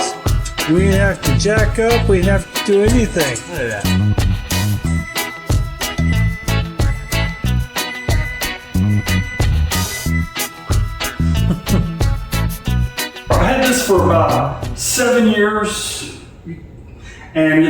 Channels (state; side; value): identical; both; correlation 1.00